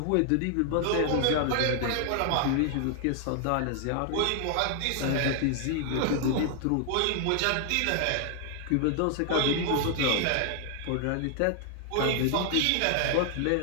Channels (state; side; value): different; both; correlation 0.00